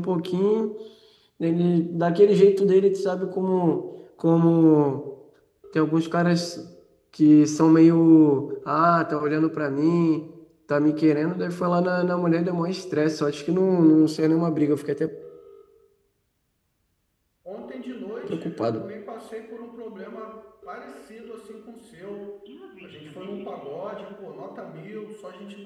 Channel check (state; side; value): identical; both; correlation 1.00